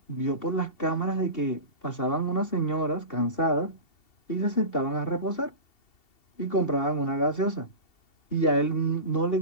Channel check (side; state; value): right; late; 2.7 ms